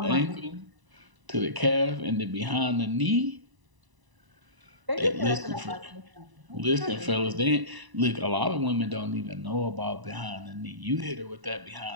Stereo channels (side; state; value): left; late; 1.0 ms